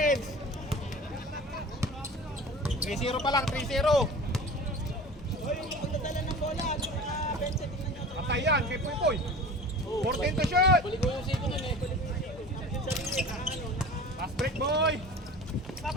3-0 pa lang, 3-0. Pagdadala ng bola, bench, tingnan nyo. Patay yan, kay Puy. 14 to shoot. Fast break, boy.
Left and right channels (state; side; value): normal; both; correlation 0.38